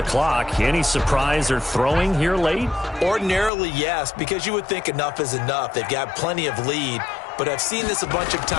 clock. Any surprise or throwing here late? Ordinarily, yes, because you would think enough is enough. They've got plenty of lead, but I've seen this a bunch of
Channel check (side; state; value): right; drops out; at 3.5 s